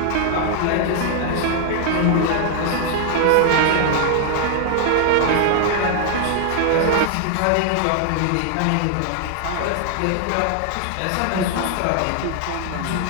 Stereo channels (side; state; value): both; different; correlation 0.00